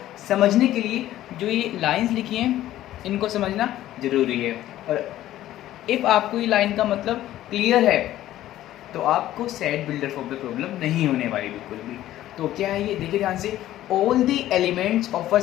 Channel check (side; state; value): right; quieter; 13.7 dB